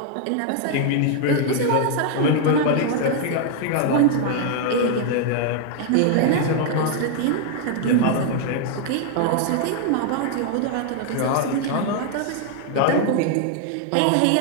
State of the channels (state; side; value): different; both; correlation 0.00